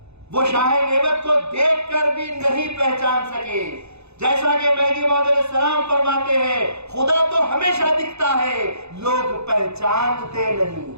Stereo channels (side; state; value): left; late; 0.80 ms